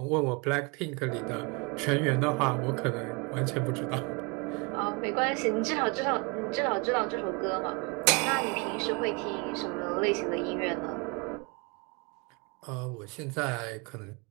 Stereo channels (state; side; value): quieter; left; 30.8 dB